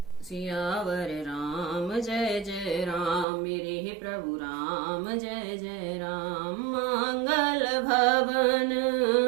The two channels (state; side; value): drops out; left; at 3.2 s